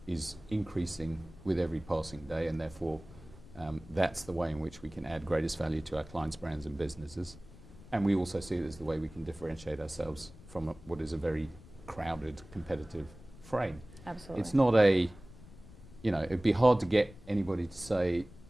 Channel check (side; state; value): left; noise; rumble, 19 dB below the sound